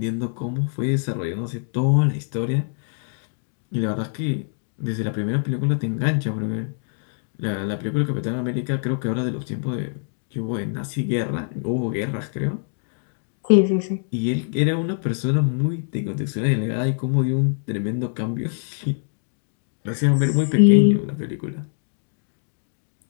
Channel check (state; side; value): silent; right; digital silence